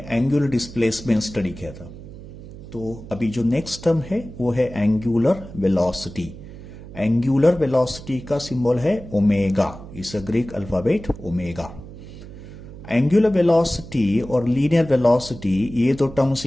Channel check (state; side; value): noise; right; hum, 15 dB below the sound